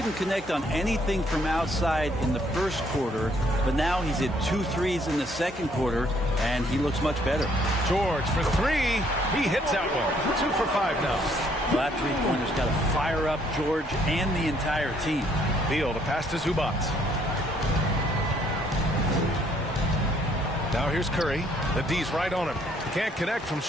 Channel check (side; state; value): both; normal; correlation 0.66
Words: connect on anything from outside in the first quarter, but now he's hit 2 threes in the second quarter, and he looks much better. George for three. He hits that one. 2 for 5 now. Well, that three-pointer's got to fire up George and the entire team. Beal to pass to Zubac. Now here's Curry. The D's right on him. Can't connect from